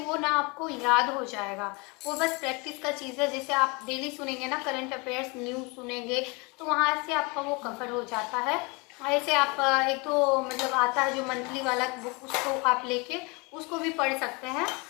ना आपको याद हो जाएगा। वो बस प्रैक्टिस का चीज़ है। जैसे आप डेली सुनेंगे ना करंट अफेयर्स न्यूज़ सुनेंगे तो वहाँ से आपका वो कवर हो जाता है। ऐसे आप एक तो मतलब आता है जो मंथली वाला बुक, उसको आप लेके उसको भी पढ़ सकते हैं,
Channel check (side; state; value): right; quieter; 28.7 dB